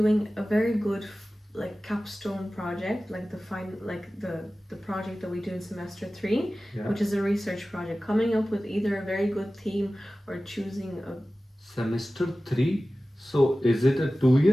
a very good like capstone project, like the project that we do in semester 3, Yeah. which is a research project, coming up with either a very good theme or choosing a Semester 3. So is it a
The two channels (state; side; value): normal; both; correlation 0.96